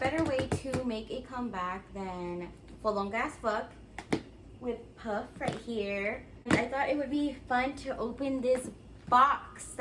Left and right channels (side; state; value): both; identical; correlation 1.00